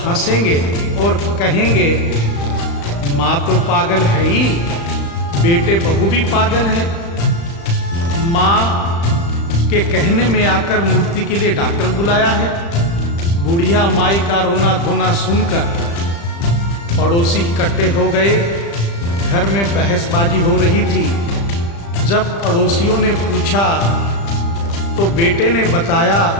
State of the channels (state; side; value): late; right; 35 ms